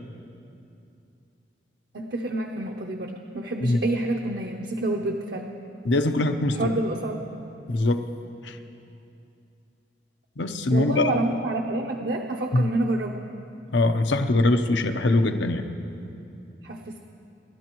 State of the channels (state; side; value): normal; both; correlation 0.62